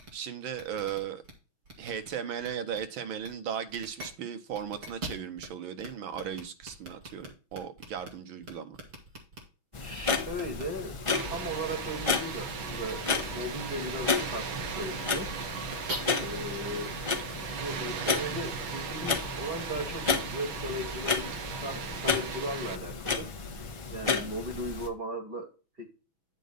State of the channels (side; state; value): left; late; 6.1 ms